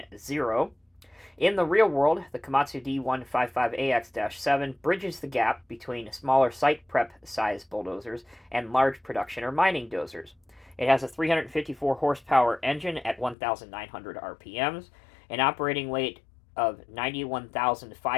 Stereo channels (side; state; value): right; drops out; at 13.4 s